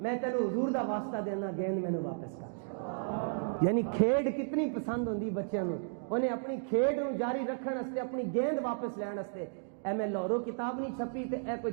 تینوں حضور دا واسطہ دینا، گیند میں نے واپس کر۔ یعنی کھیڈ کتنی پسند ہوندی بچیاں نوں، انہیں اپنی کھیڈ نوں جاری رکھن واسطے، اپنی گیند واپس لین واسطے۔ اے میں لاہوروں کتاب نہیں چھپی تے اے کوئی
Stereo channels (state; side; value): silent; left; digital silence